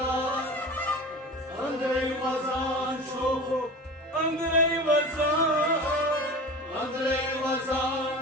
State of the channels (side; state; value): both; normal; correlation 0.34